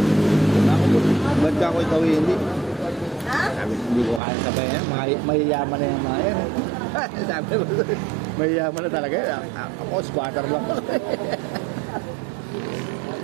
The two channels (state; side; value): drops out; left; at 4.2 s